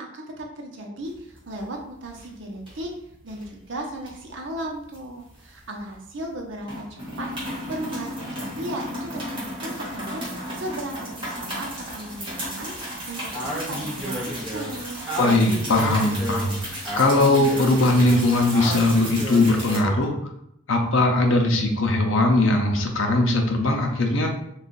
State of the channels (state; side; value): normal; both; correlation 0.51